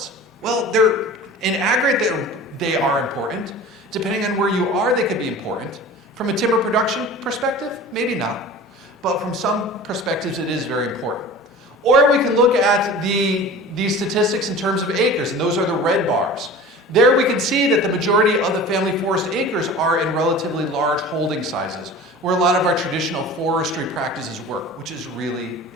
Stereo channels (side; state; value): both; normal; correlation 0.38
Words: Well, they're in aggregate, they are important. Depending on where you are, they could be important. From a timber production perspective, maybe not. But from some perspectives, it is very important. Or we can look at these statistics in terms of acres, and those are the red bars. There we can see that the majority of the family forest acres are in relatively large holding sizes, where a lot of our traditional forestry practices work, which is really